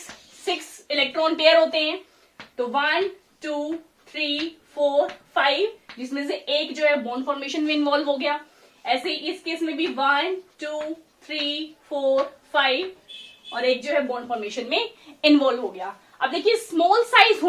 इलेक्ट्रॉन पेयर होते हैं। तो 1 2 3 4 5, जिसमें से एक जो है बॉन्ड फॉर्मेशन में इन्वॉल्व हो गया। ऐसे ही इस केस में भी 1 2 3 4 5 और एक जो है बॉन्ड फॉर्मेशन में इन्वॉल्व हो गया। अब देखिए स्मॉल साइज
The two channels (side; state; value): both; identical; correlation 1.00